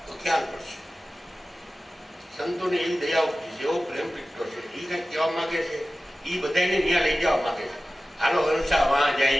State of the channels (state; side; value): normal; both; correlation 0.96